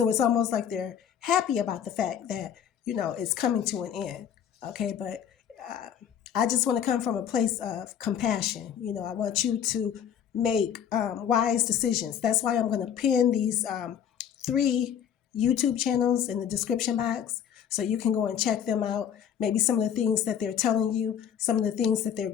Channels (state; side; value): quieter; right; 8.8 dB